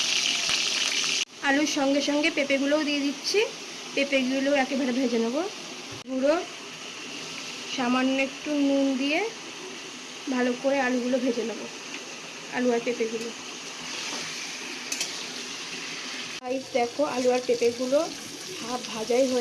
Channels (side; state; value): both; identical; correlation 1.00